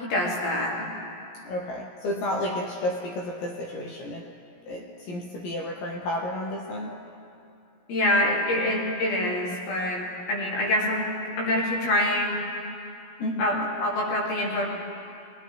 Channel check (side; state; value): right; late; 17 ms